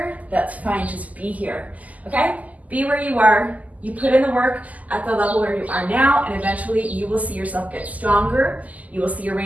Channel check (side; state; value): left; late; 0.076 ms